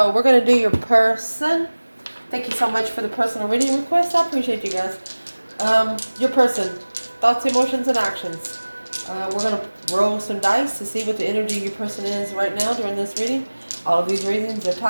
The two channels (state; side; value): inverted; both; correlation -1.00